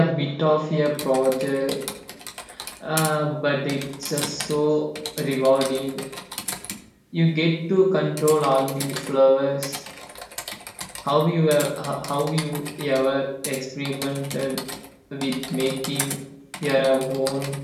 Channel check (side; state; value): both; identical; correlation 1.00